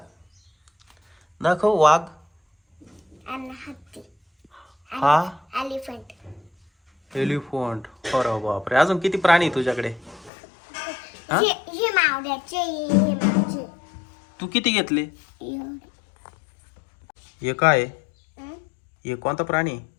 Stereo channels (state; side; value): drops out; right; at 10.3 s